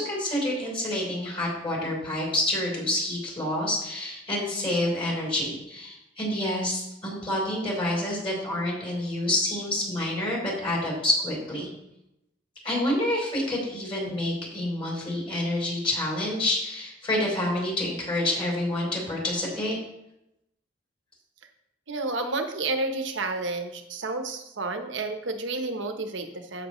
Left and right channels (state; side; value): normal; both; correlation 0.34